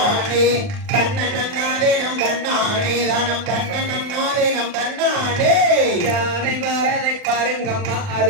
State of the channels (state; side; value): late; left; 40 ms